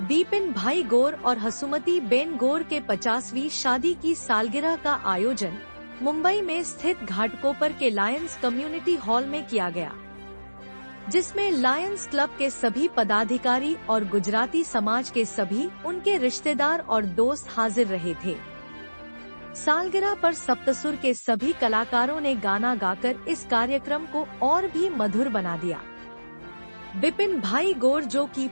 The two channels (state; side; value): inverted; both; correlation -1.00